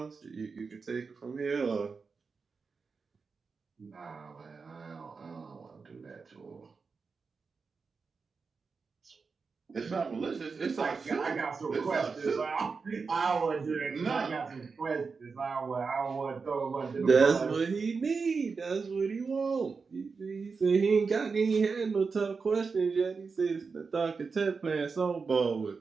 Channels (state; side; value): quieter; left; 4.9 dB